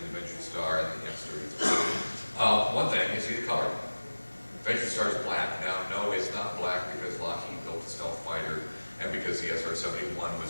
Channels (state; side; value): inverted; both; correlation -1.00